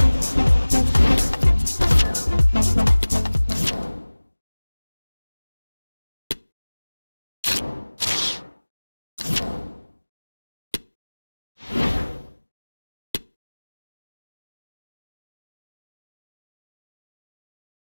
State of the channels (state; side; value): inverted; both; correlation -1.00